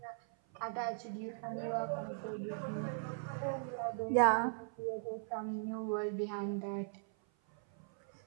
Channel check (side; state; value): left; silent; 52 dB below the other